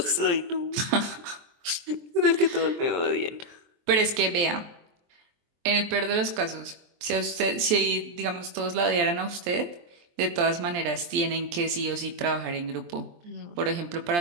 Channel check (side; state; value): left; late; 23 ms